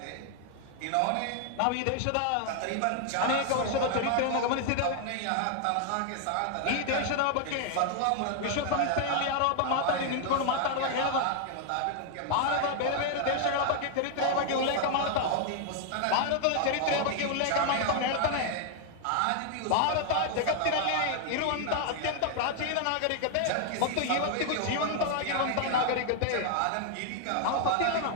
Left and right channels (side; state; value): both; different; correlation 0.00